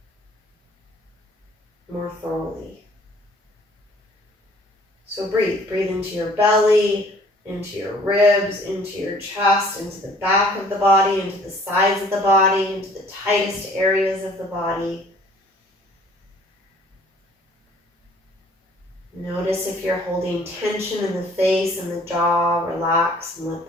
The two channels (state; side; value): normal; both; correlation 0.55